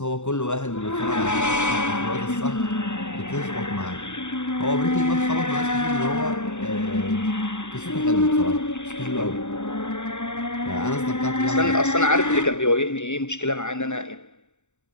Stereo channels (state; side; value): late; right; 0.84 ms